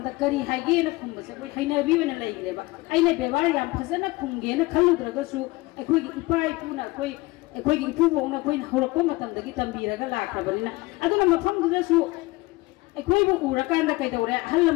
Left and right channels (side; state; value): right; quieter; 21.8 dB